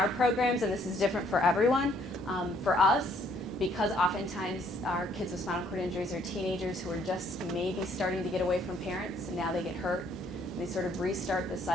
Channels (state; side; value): normal; both; correlation 0.65